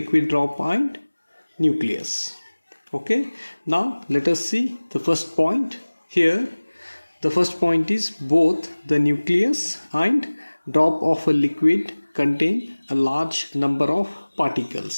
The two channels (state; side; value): inverted; both; correlation -1.00